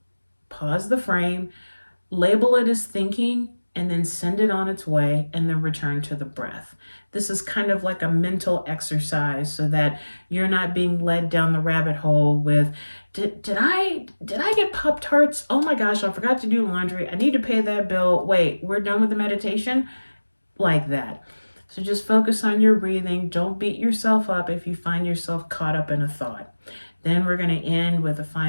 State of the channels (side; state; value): both; inverted; correlation -1.00